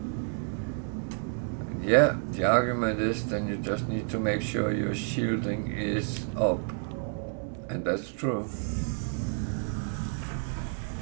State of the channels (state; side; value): silent; left; 58 dB below the other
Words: Yeah, the argument is then you just need to make sure your shielding is up. And that's true.